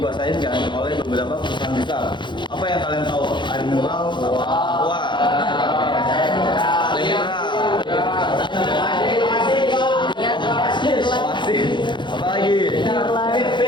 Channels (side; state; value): right; late; 0.23 ms